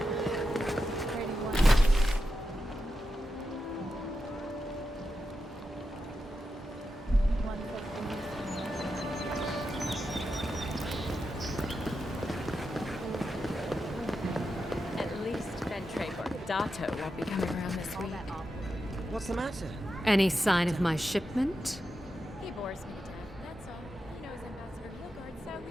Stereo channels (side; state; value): both; normal; correlation 0.88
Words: At least Phanteks or ADATA won't be coming around this week. What's the matter? Any sign of my shipment? He bores me to death, that's all. He knows Ambassador Hilgard, so we